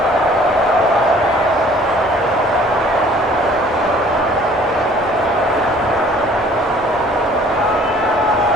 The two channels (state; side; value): normal; both; correlation 0.54